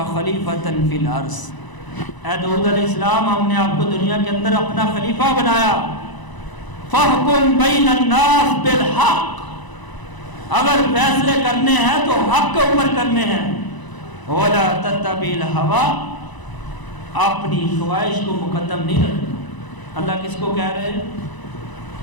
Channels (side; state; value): right; late; 1.0 ms